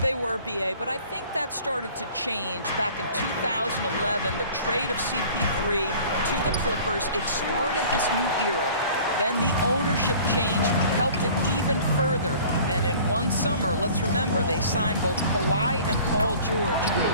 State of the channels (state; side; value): inverted; both; correlation -0.47